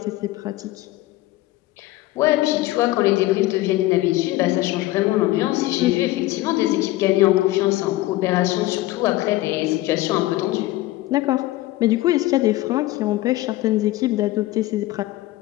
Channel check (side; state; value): right; quieter; 17.4 dB